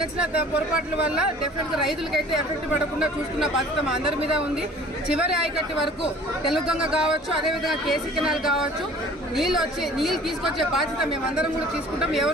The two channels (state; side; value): normal; both; correlation 0.49